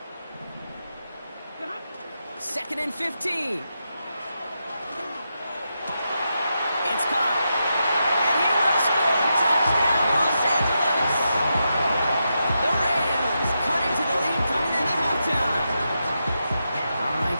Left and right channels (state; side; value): inverted; both; correlation -0.86